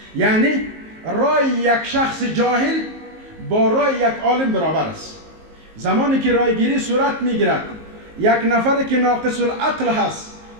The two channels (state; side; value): late; left; 19 ms